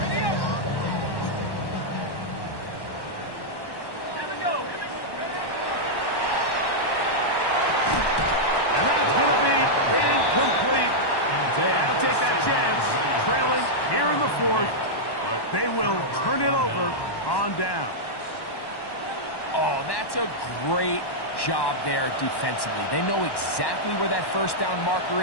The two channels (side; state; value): right; late; 1.1 ms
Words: They will turn it over on down. Oh, that's a great job there defensively. They know exactly where that 1st down marker